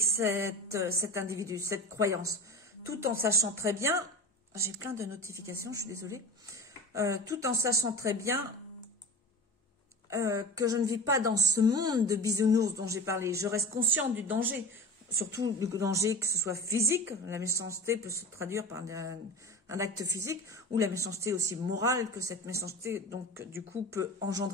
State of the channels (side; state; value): both; normal; correlation 0.31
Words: cet individu, cette croyance, tout en sachant très bien, j'ai plein de notifications, je suis désolée, tout en sachant très bien que je ne vis pas dans ce monde de bisounours dont j'ai parlé. Je reste consciente du danger, surtout le danger que ce soit physique, la méchanceté peut se traduire par un acte physique, ou la méchanceté aussi morale que cette méchanceté, donc, du coup, peut